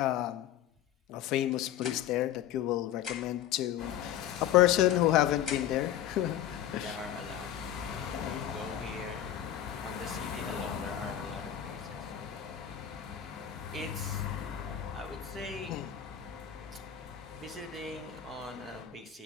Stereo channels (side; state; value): right; quieter; 10.9 dB